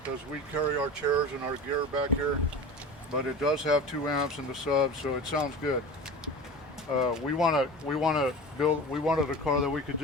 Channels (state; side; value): normal; both; correlation 0.33